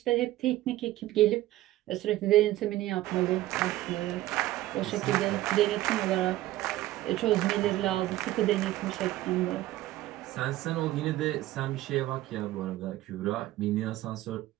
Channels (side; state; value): left; quieter; 15.8 dB